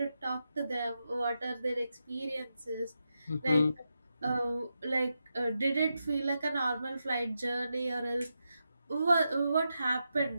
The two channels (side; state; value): both; inverted; correlation -0.87